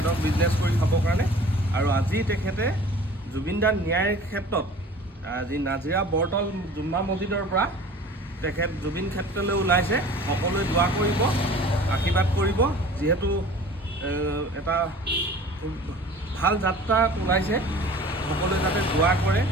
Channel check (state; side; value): normal; both; correlation 0.44